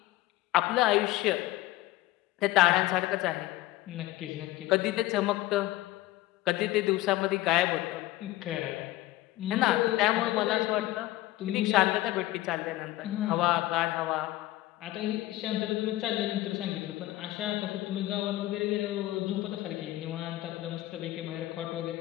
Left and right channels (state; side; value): quieter; right; 16.7 dB